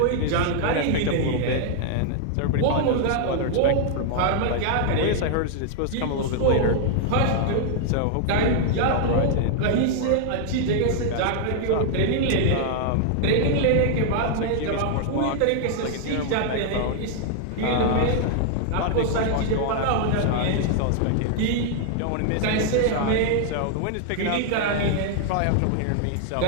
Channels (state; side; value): different; both; correlation 0.00